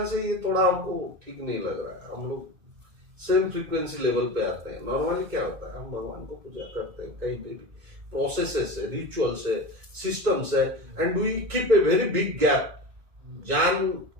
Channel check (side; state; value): left; late; 2.2 ms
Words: है ये थोड़ा हमको ठीक नहीं लग रहा है। हम लोग सेम फ्रीक्वेंसी लेवल पे आते हैं। नॉर्मली क्या होता है, हम भगवान को पूजा करते हैं, कहीं पे भी प्रोसेसेस है, रिचुअल्स है, सिस्टम्स है, and we keep a very big gap. जान